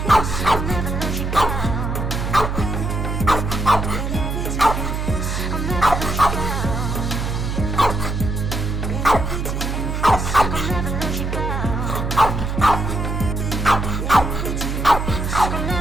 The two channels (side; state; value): right; noise; hum, 2 dB below the sound